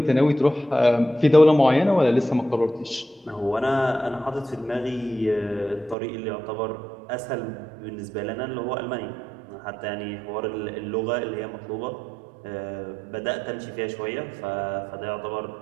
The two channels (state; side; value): drops out; left; at 6.0 s